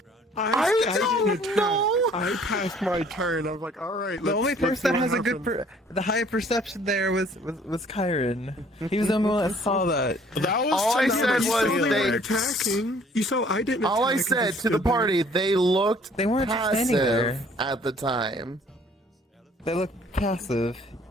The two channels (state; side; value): normal; both; correlation 0.57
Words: I didn't don't attack. know. I passed my turn. I was like, all right. The only person that has a good, the high perception there was Kyron. He was the only one that saw that. That was All I said You saw was they they. were attacking. You saw I didn't. All I attack, said just to the stood there. party, they looked They weren't just standing there. passive at the time. They looked passive.